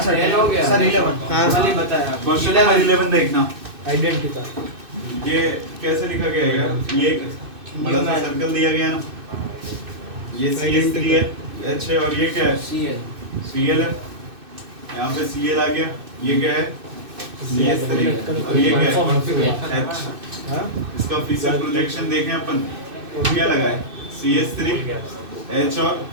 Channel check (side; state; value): left; late; 2.6 ms